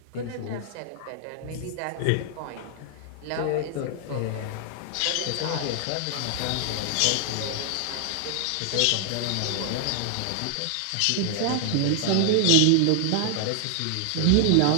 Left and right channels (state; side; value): different; both; correlation 0.00